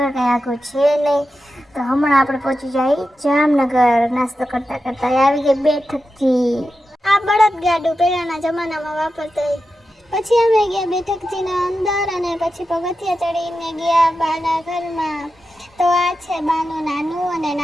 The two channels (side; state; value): both; normal; correlation 0.90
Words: કંઈ આખું છે નહીં, તો હમણાં આપણે પહોંચી જાય જામનગર. નાસ્તો કરતા કરતા આવી ગઈ બેઠકજી. આ બળદ ગાડું પહેલાના જમાનામાં વાપરતા. પછી અમે ગયા બેઠકજીના અંદર અને પછી પગથિયા ચડીને ગયા બાના ઘરમાં. તો આ છે બાનું નાનું અને